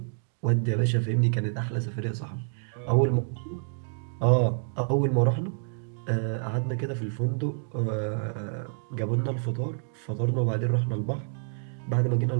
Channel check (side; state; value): left; silent; digital silence